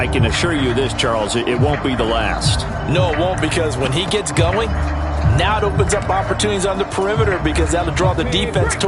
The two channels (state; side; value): identical; both; correlation 1.00